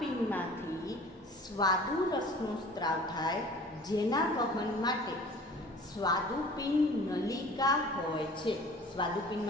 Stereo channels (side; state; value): both; normal; correlation 0.46